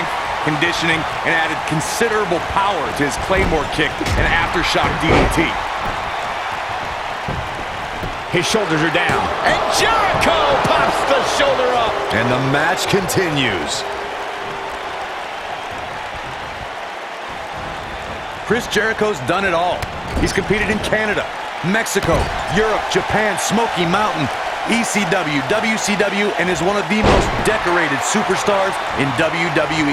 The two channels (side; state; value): both; identical; correlation 1.00